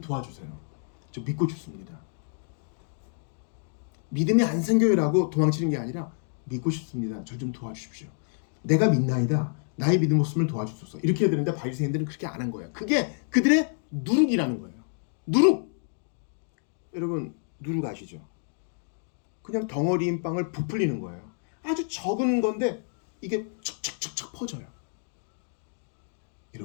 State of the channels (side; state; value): right; silent; 59 dB below the other